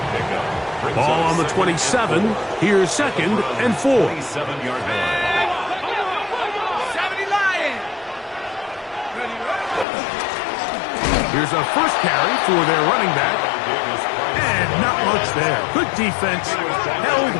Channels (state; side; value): drops out; right; at 9.9 s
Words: Ball on the 27. Here's 2nd and 4. Here's a first carry for their running back. And not much there. Good defense. Held